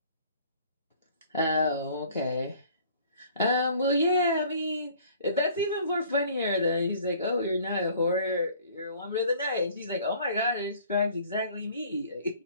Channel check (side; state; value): both; inverted; correlation -0.54